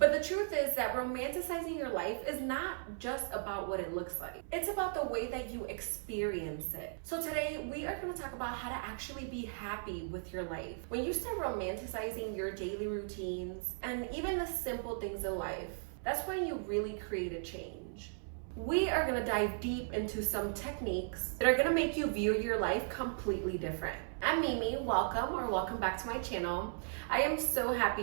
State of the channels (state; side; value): silent; left; 53 dB below the other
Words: the truth is that romanticizing your life is not just about what it looks like. It's about the way that you experience it. So today we are going to talk about how to actually be happy with your life. When you start romanticizing your daily routines and even the simple things in life, that's when you really create a change. We are going to dive deep into some techniques that are going to make you view your life completely different. I'm Mimi, welcome back to my channel. I am so happy